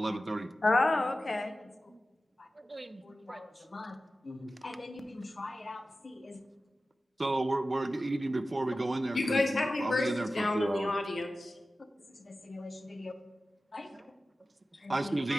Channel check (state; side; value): normal; both; correlation 0.94